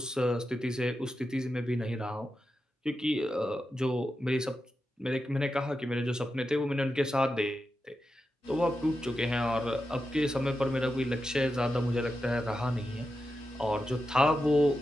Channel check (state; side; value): normal; both; correlation 0.89